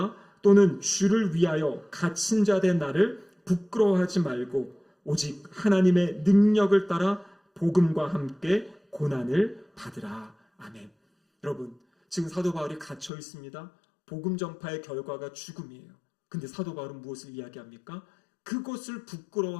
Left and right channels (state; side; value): drops out; right; at 13.1 s